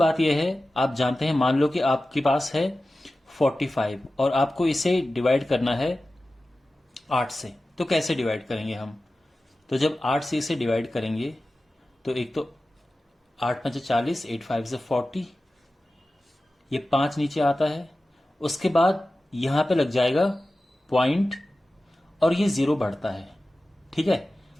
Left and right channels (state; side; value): normal; both; correlation 0.95